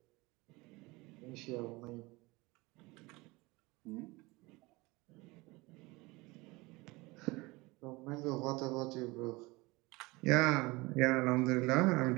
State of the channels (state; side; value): quieter; left; 23.1 dB